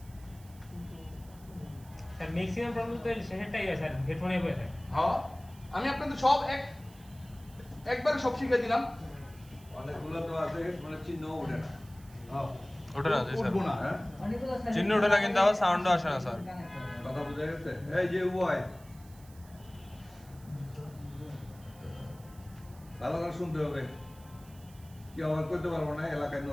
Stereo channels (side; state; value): right; noise; hiss, 25 dB below the sound